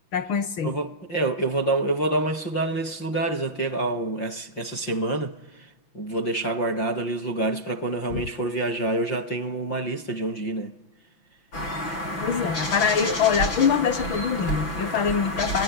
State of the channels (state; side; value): late; right; 6.0 ms